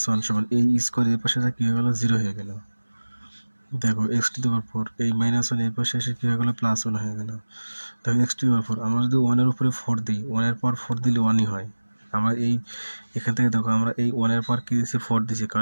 1 সমান এই স্কয়ার এর পাশে কি হয়ে গেল? 0 হয়ে গেল। দেখো x⁴ এই মাইনাস 1 এর পাশে এসে কি হয়ে গেল? প্লাস 1 হয়ে গেল। দেখো x⁴ আমরা যদি 1 এর উপরে 4 দিই, 1 এর পর 4 দিলে 1ই হয়। আমরা এখান থেকে দেখো আমরা এই 1 এর পর কি দিয়েছি? 4 দিয়েছি,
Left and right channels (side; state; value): both; inverted; correlation -1.00